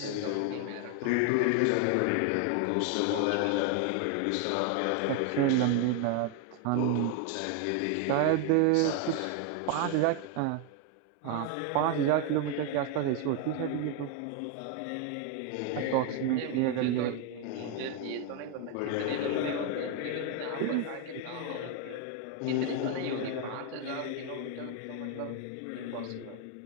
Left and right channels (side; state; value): both; different; correlation 0.01